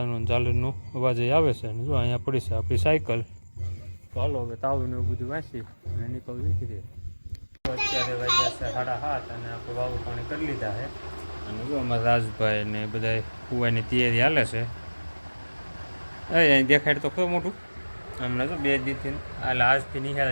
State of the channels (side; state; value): both; inverted; correlation -1.00